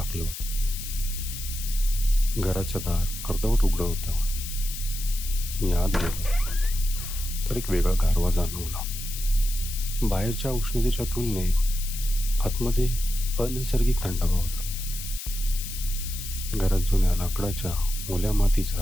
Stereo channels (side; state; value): left; noise; hiss, 9 dB below the sound